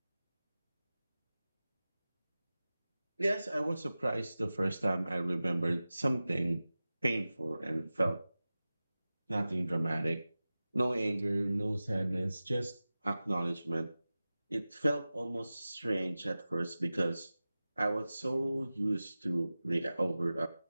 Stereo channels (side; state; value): both; inverted; correlation -0.96